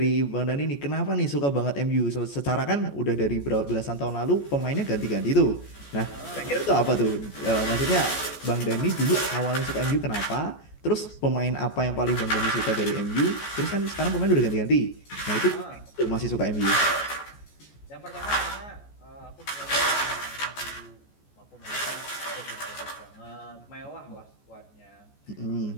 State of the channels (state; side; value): late; right; 14 ms